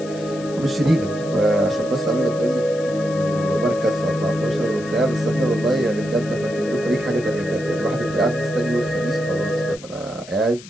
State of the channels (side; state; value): left; noise; hiss, 19 dB below the sound